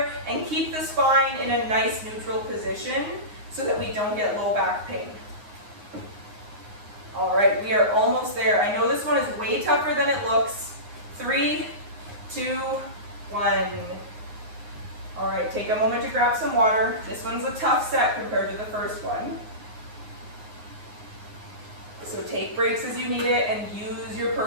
and keep the spine in a nice neutral position so that we don't get low back pain. All right, we are almost there. I know this one is way tougher than it looks. 3, 2, 1. All right, take a moment to grab some water. This one's a tough set compared to the first one. So take breaks as you need it and use your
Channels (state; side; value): late; left; 9.6 ms